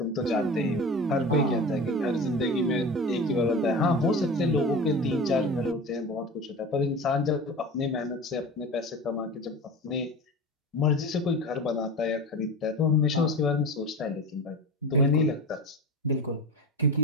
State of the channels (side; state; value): both; normal; correlation 0.31